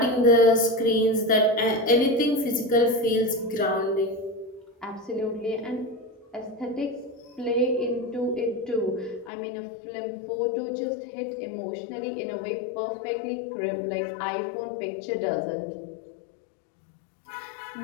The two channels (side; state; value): right; drops out; at 9.3 s